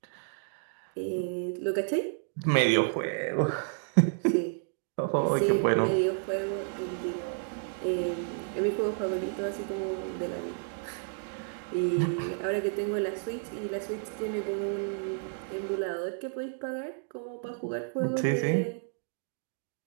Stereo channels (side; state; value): left; silent; digital silence